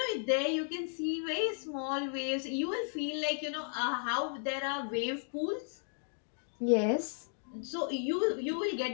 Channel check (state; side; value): silent; right; digital silence